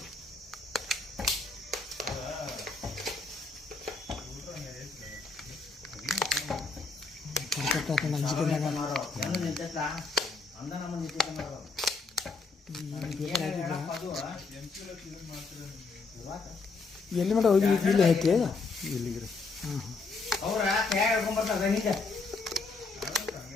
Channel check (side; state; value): right; quieter; 4.1 dB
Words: ಎಲ್ಲಿ ಮಟ್ಟ ಹೋಗಿ ಇಲ್ಲಿ ಐತಿ ಇಲ್ಲಿಗ್ರಿ ಅವ್ರ ಕೈ ಹೇಳ್ಕೊಂಬರ್ತಾರ ನಿಂಗೆ